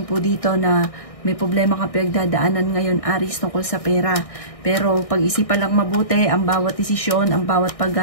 po dito na may problema kang pinagdadaanan ngayon, Aries, tungkol sa pera. Pero pag-isipan lang mabuti, ang bawat desisyon, ang bawat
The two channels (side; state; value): right; late; 1.6 ms